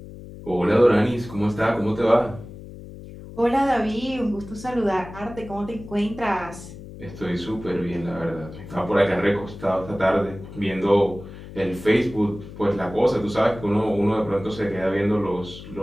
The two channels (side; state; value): left; noise; hum, 14 dB below the sound